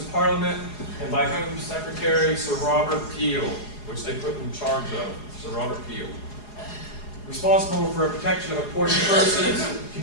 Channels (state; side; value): late; right; 4.8 ms